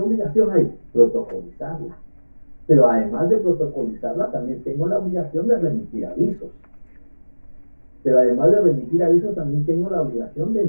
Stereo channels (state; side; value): inverted; both; correlation -1.00